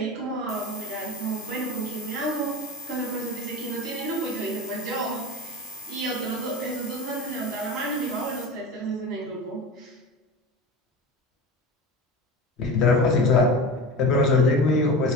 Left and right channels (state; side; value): normal; both; correlation 0.30